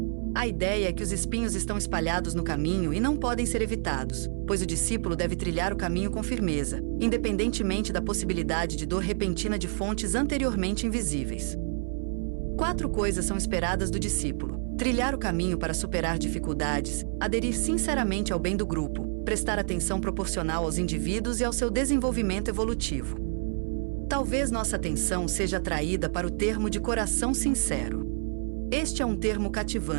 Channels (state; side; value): silent; left; 55 dB below the other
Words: A ideia é que os espinhos estão espalhados no caminho e não podem ser evitados, pois o discípulo deve trilhar o caminho com firmeza, independentemente da possibilidade de dor repentina de fontes anteriormente invisíveis. 4 coisas são esperadas do discípulo: trilhar o caminho para superar dificuldades, aderir sinceramente ao bem do grupo, prestar atenção proporcional aos indivíduos e ao seu desenvolvimento evolutivo. Talvez nossa atenção seja atraída para o termo de coração sincero. Este é um termo